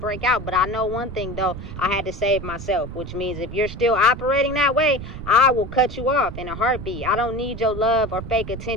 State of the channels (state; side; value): noise; right; rumble, 10 dB below the sound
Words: out. But I know one thing though, I had to save myself, which means if you're still operating that way, I will cut you off in a heartbeat. I don't need your love or fake